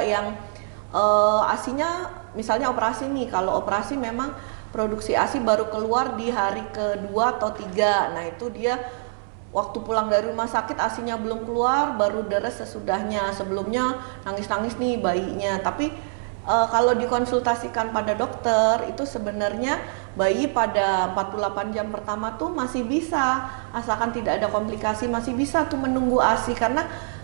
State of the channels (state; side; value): silent; left; 62 dB below the other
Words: yang ASINya misalnya operasi nih, kalau operasi memang produksi ASI baru keluar di hari kedua atau tiga. Nah itu dia waktu pulang dari rumah sakit ASInya belum keluar, baru deres sesudahnya. Sebelumnya nangis-nangis nih bayinya. Tapi kalau dikonsultasikan pada dokter itu sebenarnya bayi pada 48 jam pertama tuh masih bisa, asalkan tidak ada komplikasi masih bisa tuh menunggu ASI, karena